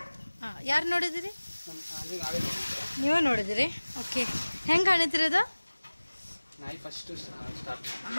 ಹಾಂ, ಯಾರು ನೋಡಿದಿರಿ? ನೀವೇ ನೋಡಿದಿರಿ? ओके, ಹೆಂಗೆ ಕಾಣಿದ್ರಿ ಅದು?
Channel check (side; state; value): both; inverted; correlation -1.00